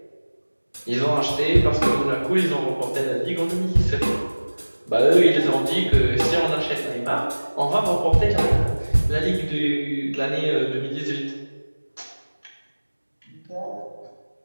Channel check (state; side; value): inverted; both; correlation -1.00